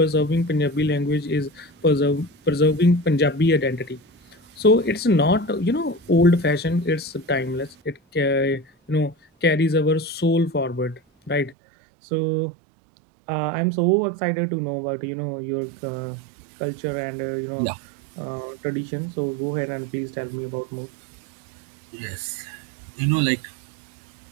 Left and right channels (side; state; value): left; drops out; at 11.6 s